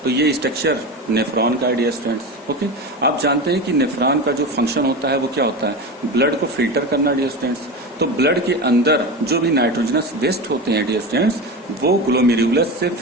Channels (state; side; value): normal; both; correlation 0.24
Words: तो ये स्ट्रक्चर नेफ्रॉन का है डियर स्टूडेंट्स। ओके, आप जानते हैं कि नेफ्रॉन का जो फंक्शन होता है वो क्या होता है, ब्लड को फिल्टर करना डियर स्टूडेंट्स। तो ब्लड के अंदर जो भी नाइट्रोजनस वेस्ट होते हैं डियर स्टूडेंट्स वो ग्लोमेरुलस से